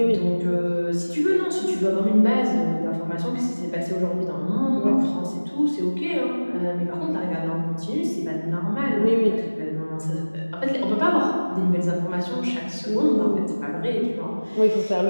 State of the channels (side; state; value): both; inverted; correlation -1.00